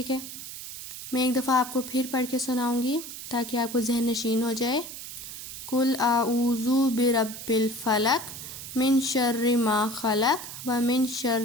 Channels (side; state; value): right; noise; hiss, 10 dB below the sound